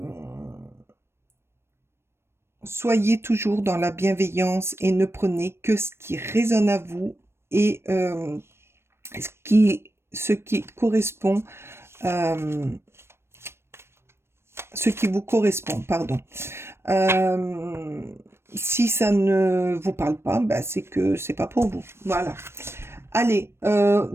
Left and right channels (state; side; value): late; left; 0.12 ms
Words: Soyez toujours dans la bienveillance et ne prenez que ce qui résonne à vous et ce qui correspond. euh, Ce qui vous correspond, pardon. Euh, Si ça ne vous parle pas, c'est que c'est pas pour vous. Voilà. Allez,